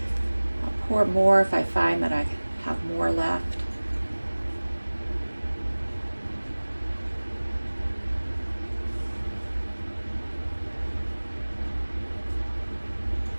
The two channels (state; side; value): inverted; both; correlation -1.00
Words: I'll pour more if I find that I have more left.